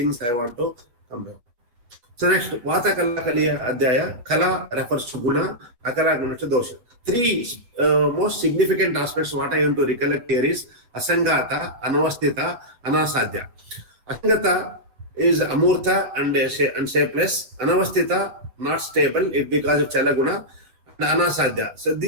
I want to come back. So, next, Vata Kalakaliya Adhyaya. Kala refers to Guna, Akara Guna to Dosha. Three most significant aspects what I want to recollect here is Asangata, Anavastita, Anasadhya. Asangata is Amurtha and shapeless. Anavastita, not stable, it because of Chalaguna. And Anasadhya. So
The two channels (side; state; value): left; late; 8.1 ms